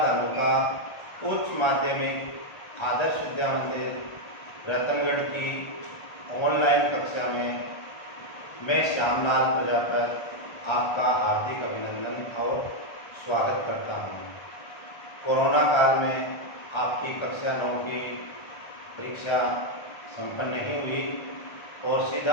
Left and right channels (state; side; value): late; right; 1.3 ms